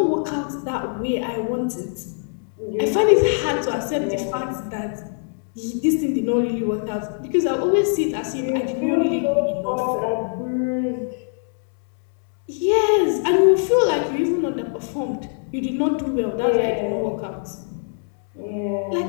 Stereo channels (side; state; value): right; silent; 64 dB below the other